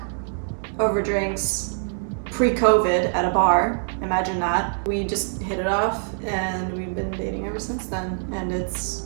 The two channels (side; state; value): left; silent; 62 dB below the other